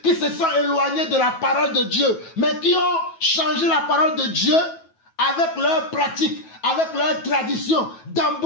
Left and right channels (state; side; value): late; right; 9.2 ms